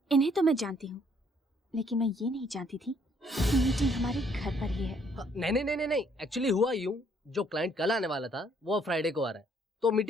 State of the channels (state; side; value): normal; both; correlation 0.65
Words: इन्हें तो मैं जानती हूँ, लेकिन मैं ये नहीं जानती थी कि मीटिंग हमारे घर पर ही है। नहीं, एक्चुअली हुआ यूं, जो क्लाइंट कल आने वाला था वो अब फ्राइडे को आ रहा है, तो